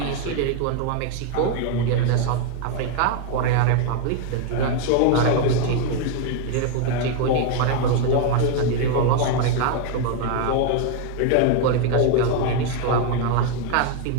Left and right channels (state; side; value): different; both; correlation 0.01